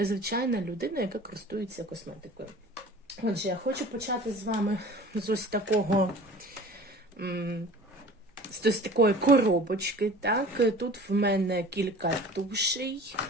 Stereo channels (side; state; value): both; normal; correlation 0.43